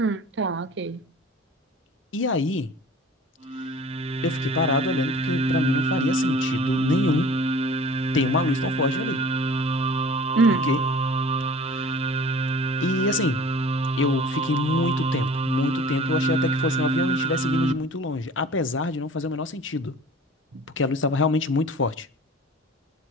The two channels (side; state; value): both; normal; correlation 0.44